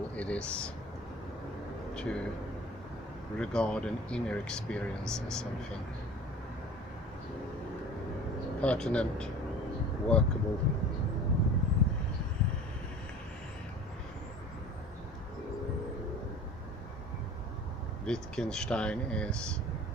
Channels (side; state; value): both; normal; correlation 0.42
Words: it is to regard an inner experience as something pertinent, workable. Wittgenstein is,